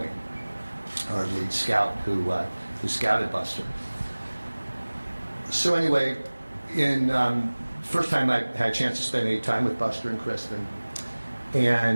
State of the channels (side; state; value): both; inverted; correlation -1.00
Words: our lead scout who scouted Buster. So anyway, in first time I had a chance to spend any time with Buster and Kristen,